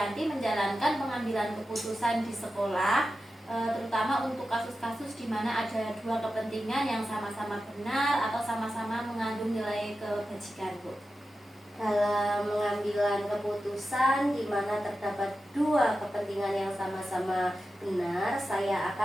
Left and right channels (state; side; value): normal; both; correlation 0.92